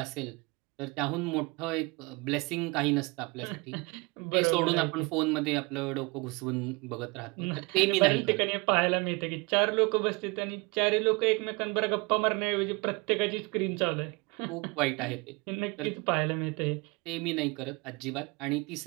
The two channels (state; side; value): quieter; left; 27.5 dB